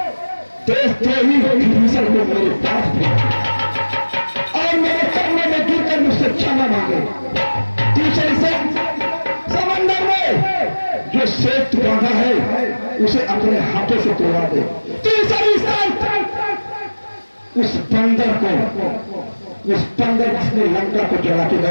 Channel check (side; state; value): both; inverted; correlation -1.00